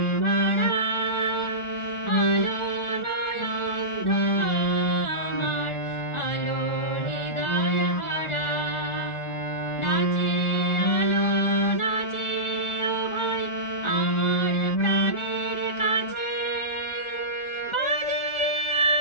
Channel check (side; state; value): right; late; 1.4 ms